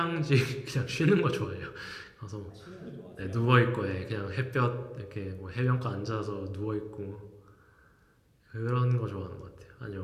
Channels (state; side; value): identical; both; correlation 1.00